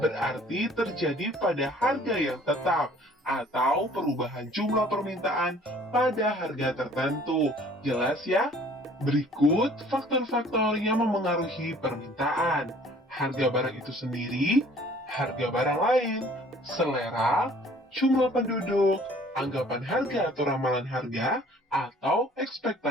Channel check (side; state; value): both; normal; correlation 0.54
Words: terjadi pada harga yang tetap atau perubahan jumlah permintaan pada harga tertentu. Jelas ya? Berikut faktor-faktor yang memengaruhi permintaan. Harga barang itu sendiri, harga barang lain, selera, jumlah penduduk, anggapan harga atau ramalan harga, atau